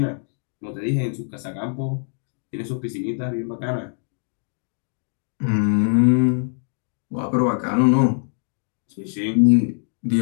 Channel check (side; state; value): right; silent; 63 dB below the other